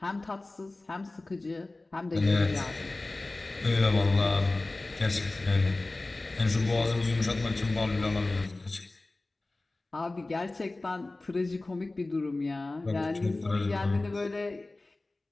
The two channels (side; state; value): right; quieter; 3.0 dB